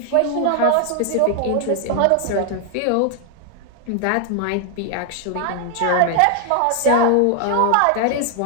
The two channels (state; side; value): different; both; correlation 0.00